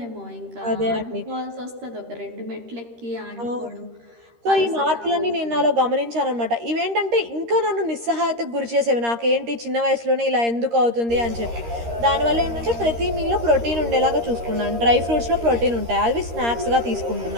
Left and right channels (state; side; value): late; left; 13 ms